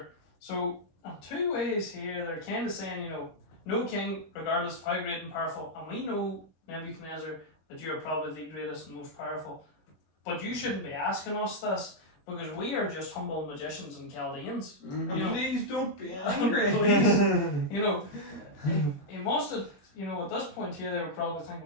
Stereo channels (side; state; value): right; late; 21 ms